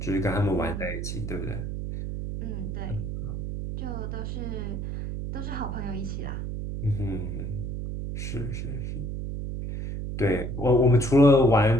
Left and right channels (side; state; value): right; noise; hum, 4 dB below the sound